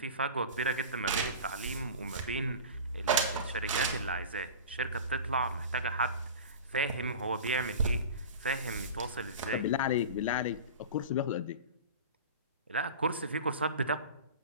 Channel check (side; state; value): both; inverted; correlation -0.33